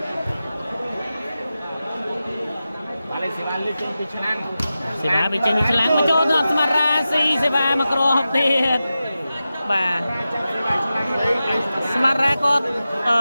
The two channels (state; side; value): inverted; both; correlation -0.93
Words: បាទលេងសេវាលេងចេញពីឆ្នាំង សេវាវាចេញពីឆ្លាំងមកចូលដល់ស្មារ៉ាស៊ីសេវាមកក្រហបទៀតបាទស្មារ៉ាគាត់